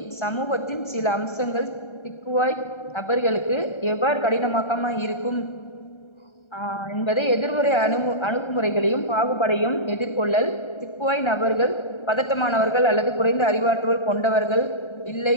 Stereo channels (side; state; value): right; late; 1.3 ms